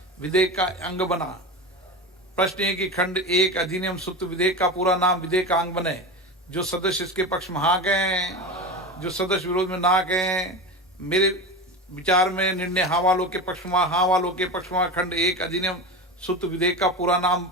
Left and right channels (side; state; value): both; normal; correlation 0.25